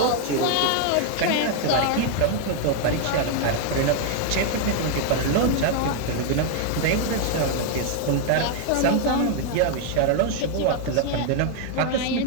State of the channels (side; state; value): both; different; correlation 0.00